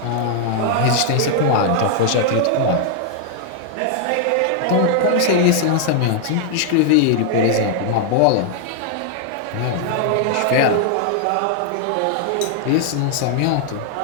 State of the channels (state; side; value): different; both; correlation 0.00